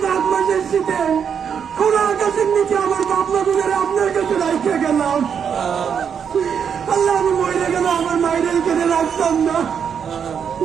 মাঘ মাসের শীতে খোলা আকাশের নিচে আমার বাপমা গুলোর আপনার কাছে রাখতে গেলাম। আল্লাহ আমি মরে গেল আমার মায়ের এখানে রাখতাম না,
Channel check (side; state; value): left; quieter; 7.4 dB